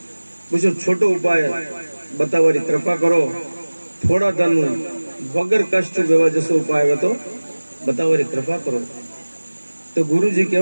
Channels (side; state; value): both; inverted; correlation -1.00